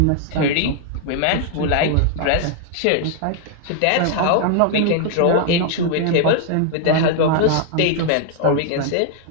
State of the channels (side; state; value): both; different; correlation 0.00